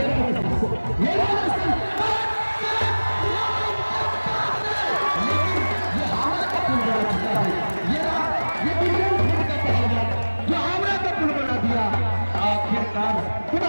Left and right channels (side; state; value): both; inverted; correlation -1.00